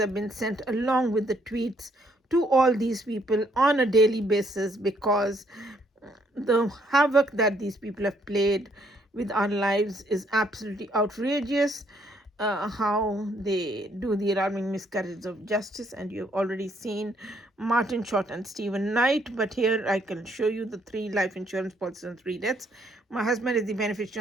been sent along with the tweets to all these people on a daily basis, because the havoc that these people have played with our lives is absolutely outrageous. How they do the alarming miscarriage of justice, and you've already seen Martin Short and Stephen Knight, but here I can show you the 3 life insurance policies and 3 deaths. My husband is the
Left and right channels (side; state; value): both; normal; correlation 0.69